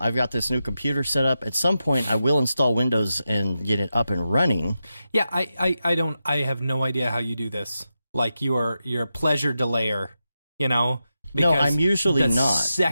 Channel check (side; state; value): both; inverted; correlation -0.89